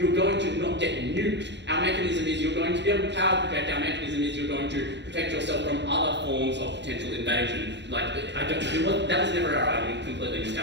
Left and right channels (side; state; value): left; late; 0.51 ms